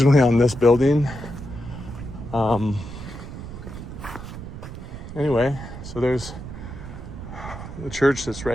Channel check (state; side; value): noise; right; rumble, 10 dB below the sound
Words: on this building. Anyway, so there's the church that's